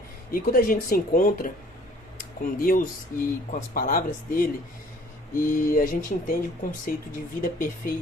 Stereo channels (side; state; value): both; normal; correlation 0.55